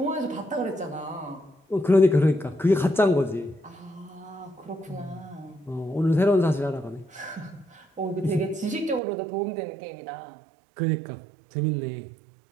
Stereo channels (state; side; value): drops out; left; at 9.0 s